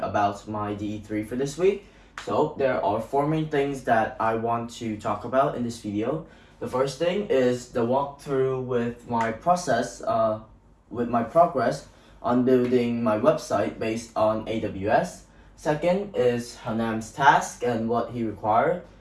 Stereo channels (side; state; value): both; identical; correlation 1.00